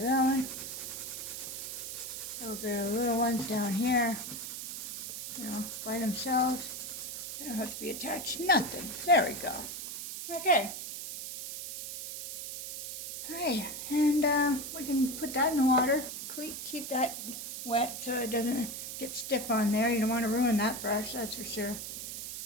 one. A little bit of little ones down here, you know, by themselves. They don't have to be attached, nothing. There we go. Okay. Alright, and we can put that in the water. Keep that wet so it doesn't get stiff on there. You don't want to ruin that brush, that's for sure.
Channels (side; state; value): right; noise; hiss, 7 dB below the sound